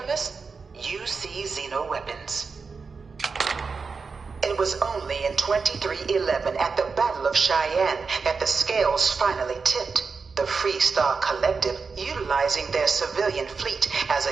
xeno-weapons. It was only in 2311 at the Battle of Cheyenne that the scales finally tipped. The Free Star Collective, utilizing their civilian fleet as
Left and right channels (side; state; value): left; quieter; 4.9 dB